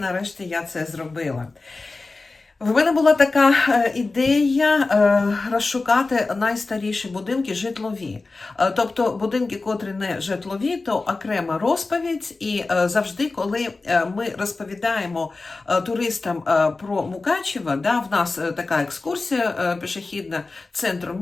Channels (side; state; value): right; quieter; 3.6 dB